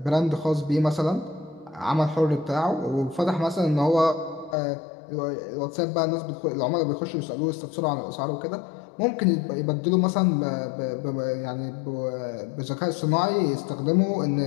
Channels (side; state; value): right; drops out; at 4.5 s